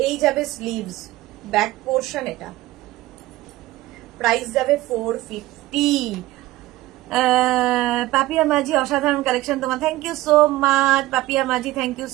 এই যাবে স্লিভস, ব্যাক পোর্শন, এটা প্রাইস যাবে 450। পাপিয়া মাঝি অসাধারণ কালেকশন তোমার, thank you so much Papiya Majhi, thank you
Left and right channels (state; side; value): quieter; left; 17.5 dB